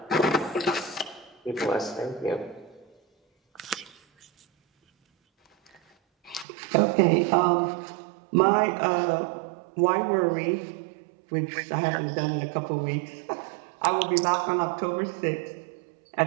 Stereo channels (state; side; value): drops out; left; at 6.5 s